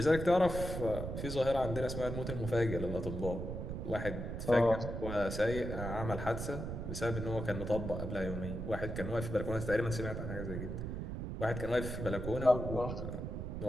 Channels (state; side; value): noise; right; rumble, 5 dB below the sound